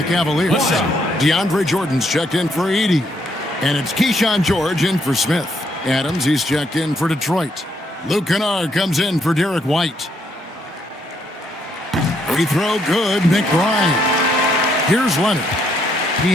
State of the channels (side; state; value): both; normal; correlation 0.73